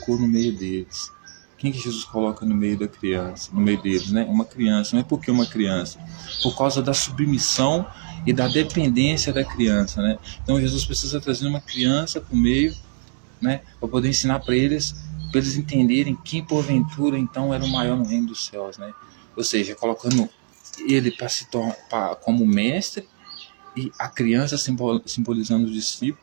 no meio deles. Quem que Jesus coloca no meio da criança, no meio deles, né? Uma criança. Não é porque uma criança, por causa da submissão e da dependência da criança, né? Então Jesus precisa trazer uma criança para o meio né? Para poder ensinar para eles entenderem quem porventura então era o maior no reino dos céus, né? Ou seja, colocando ele para se tornar como mestre e a criança simbolizando os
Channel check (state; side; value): silent; left; digital silence